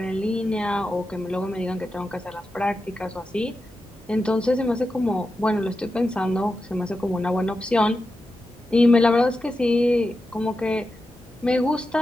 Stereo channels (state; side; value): normal; both; correlation 0.90